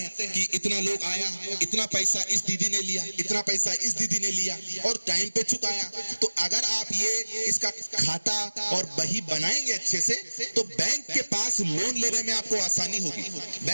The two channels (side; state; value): both; inverted; correlation -1.00